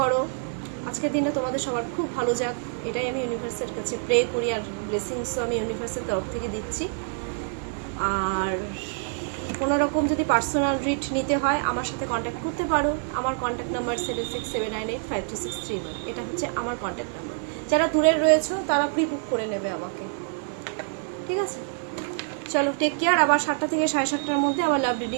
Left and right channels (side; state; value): left; silent; 56 dB below the other